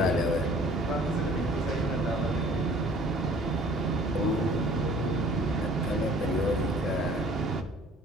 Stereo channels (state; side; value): normal; both; correlation 0.52